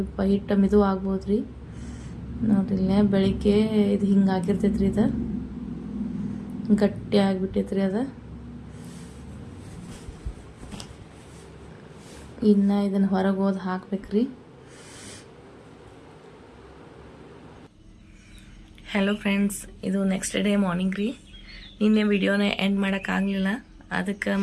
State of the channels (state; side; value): identical; both; correlation 1.00